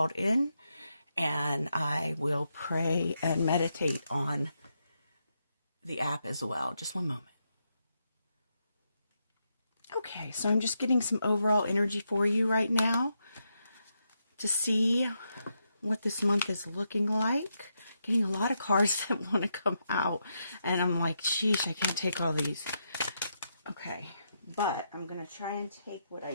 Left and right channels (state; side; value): inverted; both; correlation -0.82